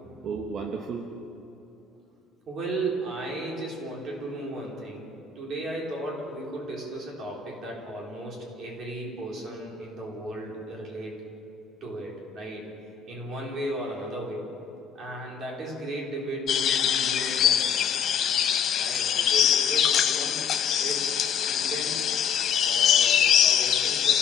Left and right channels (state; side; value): quieter; right; 6.5 dB